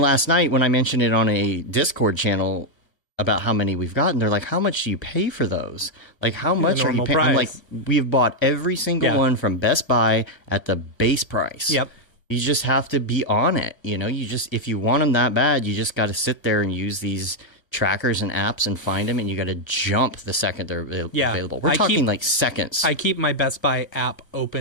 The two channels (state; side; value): late; right; 1.0 ms